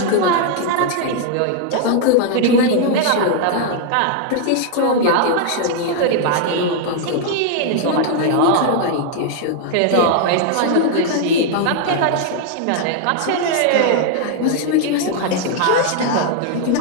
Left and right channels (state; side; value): different; both; correlation 0.00